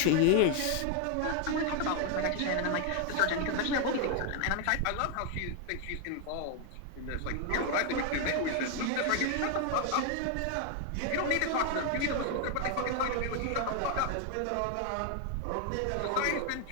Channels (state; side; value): different; both; correlation 0.01